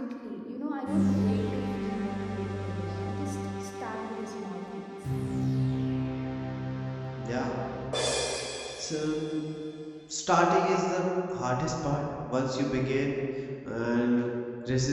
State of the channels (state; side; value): identical; both; correlation 1.00